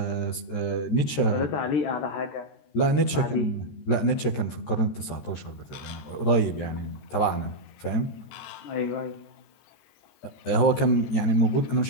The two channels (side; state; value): right; late; 13 ms